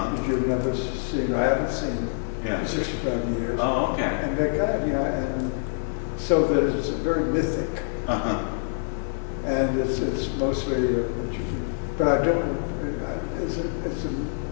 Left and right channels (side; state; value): right; silent; digital silence